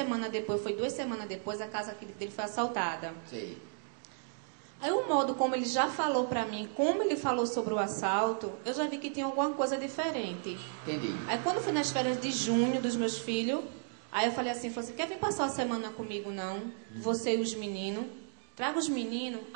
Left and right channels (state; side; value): silent; left; digital silence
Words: depois, foi 2 semanas depois, a casa dele foi assaltada. Sei. Aí o modo como ele já falou pra mim, como ele falou sobre o assalto, eu já vi que tinha alguma coisa diferente. Entendi. Aí quando foi nas férias de junho dos meus filhos, aí eu falei assim, quer vir passar a semana comigo não? Você e os meninos? Traga os meninos?